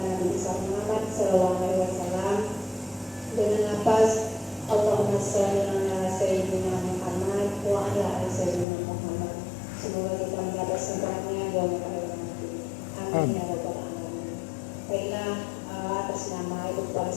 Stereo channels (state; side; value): drops out; right; at 8.7 s